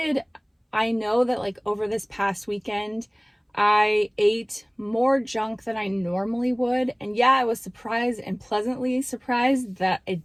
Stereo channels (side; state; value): both; identical; correlation 1.00